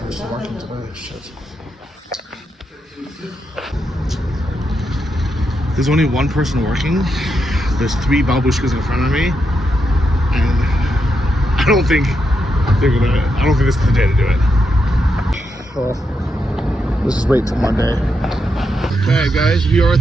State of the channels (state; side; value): normal; both; correlation 0.83